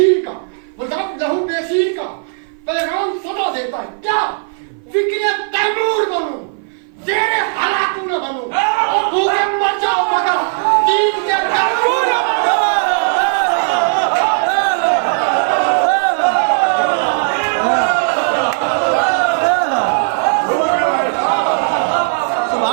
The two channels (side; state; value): left; silent; 57 dB below the other